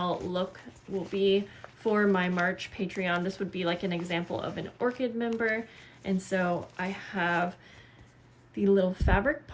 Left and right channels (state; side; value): identical; both; correlation 1.00